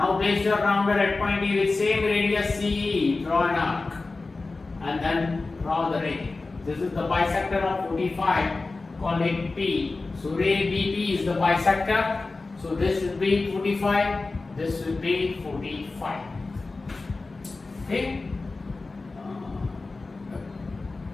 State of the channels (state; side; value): quieter; right; 3.6 dB